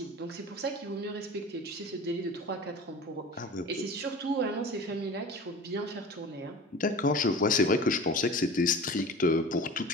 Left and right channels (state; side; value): normal; both; correlation 0.37